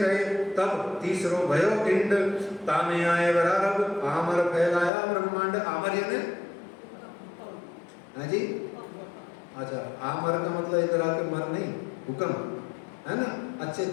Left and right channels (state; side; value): drops out; right; at 4.9 s